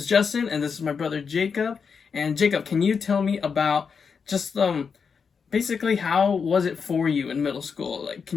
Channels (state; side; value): quieter; right; 5.9 dB